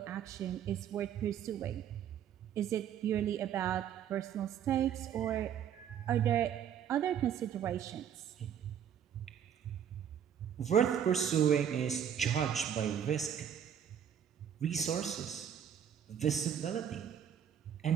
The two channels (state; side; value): quieter; left; 8.9 dB